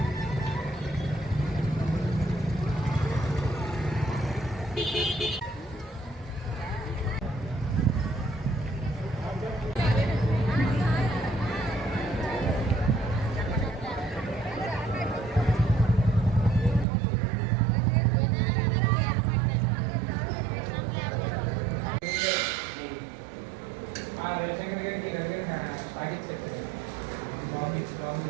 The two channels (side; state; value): left; drops out; at 16.9 s